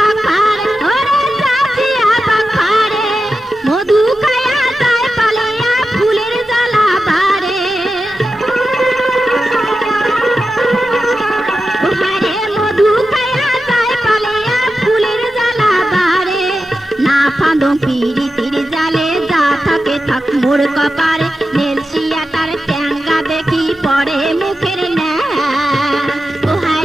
মোর কপারে নেলসিয়া তার ট্যাঙ্গা দেখি পরে মুখের ও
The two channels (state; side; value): normal; both; correlation 0.91